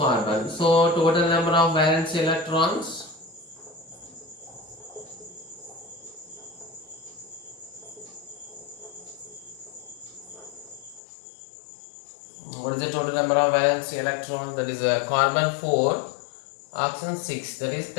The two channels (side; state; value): right; drops out; at 11.0 s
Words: So total number of valence electrons. What is is the total number of valence electrons? That is carbon 4, oxygen 6, that is